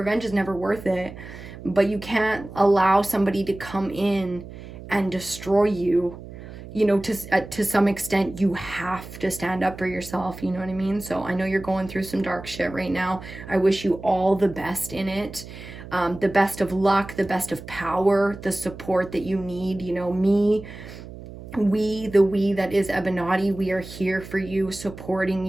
is never worth it. But you can't allow somebody to come in and destroy you. You know, to some extent, you have to stand up for yourself. You know what I mean? So I know you're going through some dark shit right now. I wish you all the best in it. The best of luck, the best of power, the support that you need. You know, me, we that is EBINOTTI, we are here for you, supporting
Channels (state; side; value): noise; right; hum, 14 dB below the sound